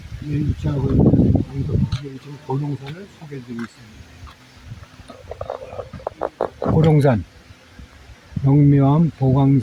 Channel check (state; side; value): identical; both; correlation 1.00